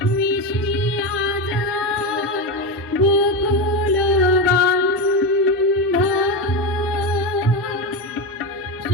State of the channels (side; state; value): both; normal; correlation 0.15